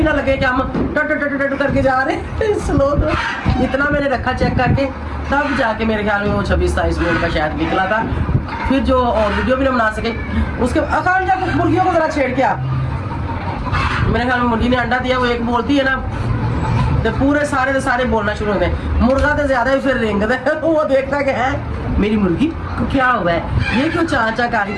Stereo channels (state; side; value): identical; both; correlation 1.00